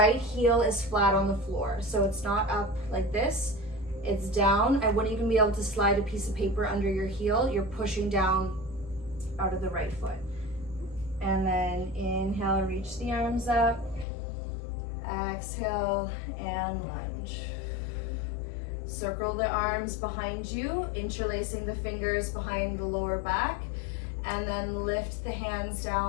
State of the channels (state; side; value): drops out; right; at 14.1 s